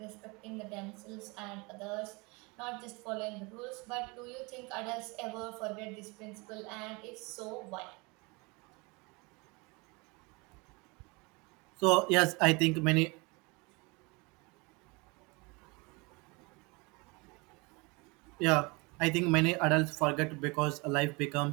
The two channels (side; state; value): left; quieter; 27.4 dB